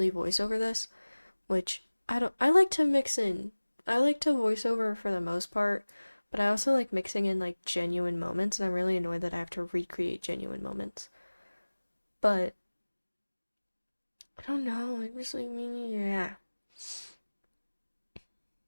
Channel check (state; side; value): inverted; both; correlation -1.00